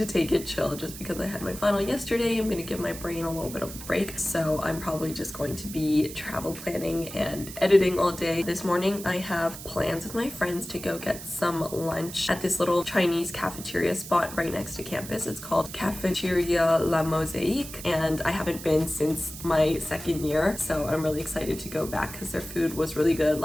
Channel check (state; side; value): noise; right; hiss, 12 dB below the sound